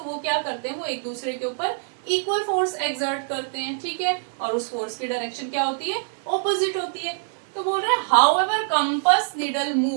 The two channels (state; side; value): silent; left; digital silence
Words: वो क्या करते हैं, वो एक दूसरे के ऊपर इक्वल फोर्स एक्सर्ट करते हैं, ठीक है, और उस फोर्स की डायरेक्शन क्या होती है, ऑपोजिट होती है। तो बोल रहे हैं however compass needle